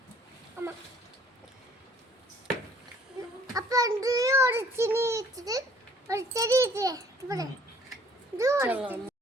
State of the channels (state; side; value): normal; both; correlation 0.57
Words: அம்மா அப்ப அந்த ஒரு சினி வச்சிட்டு ஒரு செடி இது பாரு இது ஒரு